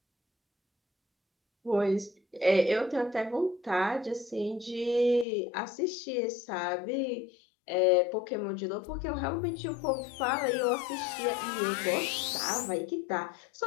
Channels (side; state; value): right; drops out; at 5.2 s